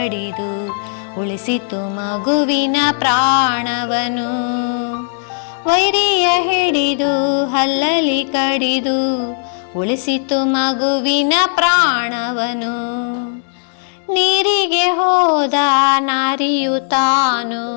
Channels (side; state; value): right; silent; digital silence